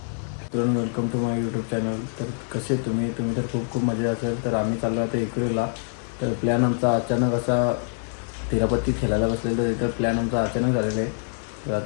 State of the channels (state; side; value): silent; right; 62 dB below the other